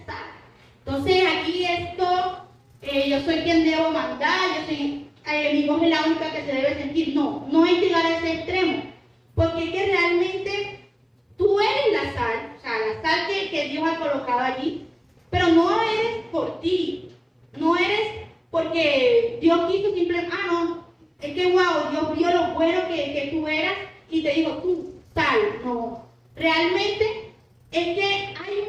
sal. Entonces aquí esto, yo soy quien debo mandar, yo soy, mi voz es la única que se debe sentir. No, no es llegar a ese extremo, porque es que realmente tú eres la sal, o sea, la sal que Dios ha colocado allí, pero no eres por ti, no eres porque Dios quiso simplemente, no, es que wow, Dios vio lo bueno que tú eras y te dijo, tú, tal, no. Realmente es que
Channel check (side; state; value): both; identical; correlation 1.00